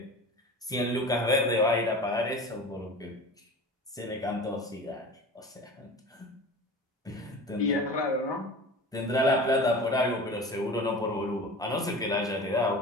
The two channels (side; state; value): both; normal; correlation 0.35